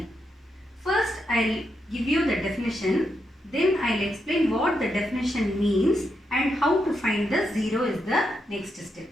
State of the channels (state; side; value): normal; both; correlation 0.83